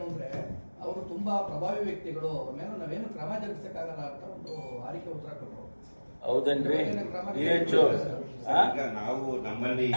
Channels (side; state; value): both; inverted; correlation -1.00